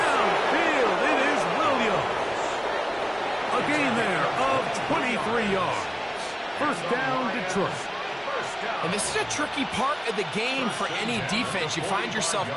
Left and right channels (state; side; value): identical; both; correlation 1.00